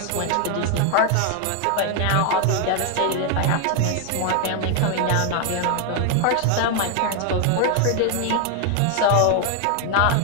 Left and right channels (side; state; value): both; different; correlation 0.00